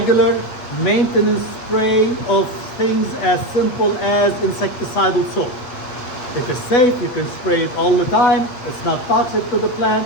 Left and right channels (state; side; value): late; right; 8.2 ms